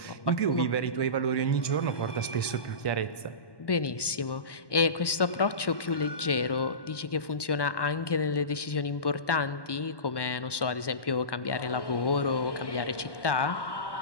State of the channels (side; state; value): right; late; 1.1 ms